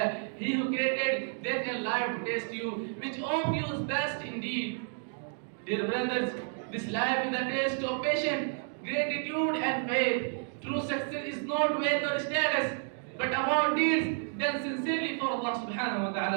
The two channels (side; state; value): left; silent; 57 dB below the other